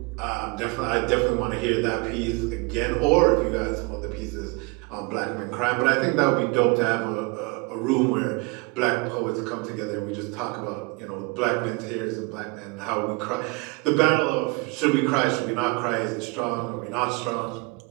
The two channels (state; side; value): quieter; left; 27.5 dB